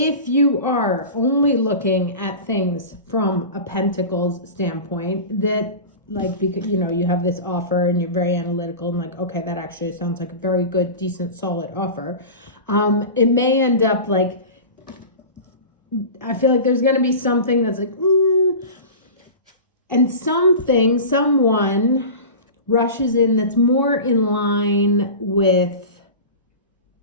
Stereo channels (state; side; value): inverted; both; correlation -0.31